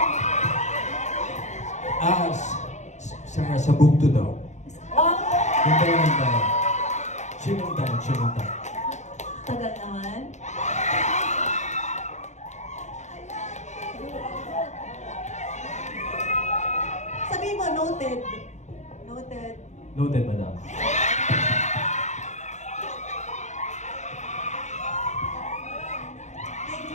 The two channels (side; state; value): right; late; 0.34 ms